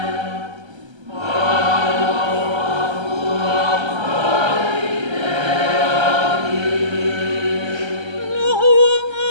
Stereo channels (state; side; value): late; left; 1.3 ms